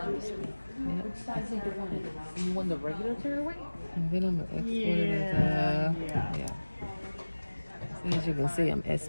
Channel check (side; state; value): both; inverted; correlation -1.00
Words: this way. Yep. Which size do you want it? You want the regular tearaway? And then I'm gonna export it as yeah. So as you can see, I'm